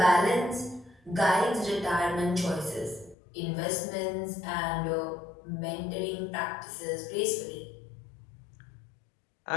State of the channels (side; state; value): right; drops out; at 3.2 s